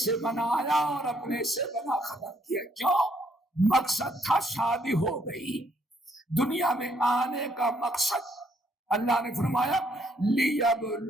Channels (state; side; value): normal; both; correlation 0.70